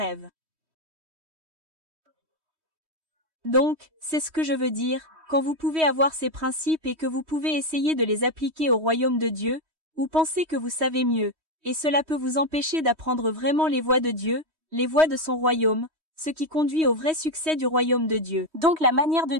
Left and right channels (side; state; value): left; late; 3.1 ms